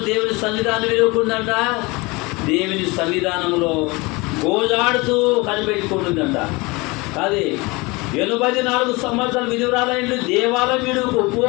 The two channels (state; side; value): quieter; right; 24.8 dB